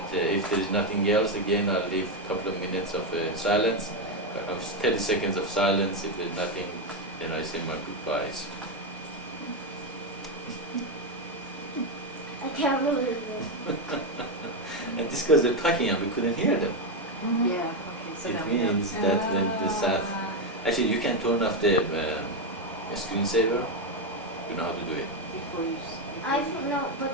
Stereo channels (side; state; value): both; normal; correlation 0.08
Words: if there is nothing else, again, I'll leave a couple of minutes of silence, 30 seconds of silence. If there's nothing, then I say my goodbyes. I can't believe it. And this because they're talking and we couldn't hear them. Yeah, okay, so now It we know. means that when the Sat... Actually, you can turn off the screensaver. You know how to do it. Before you I don't know,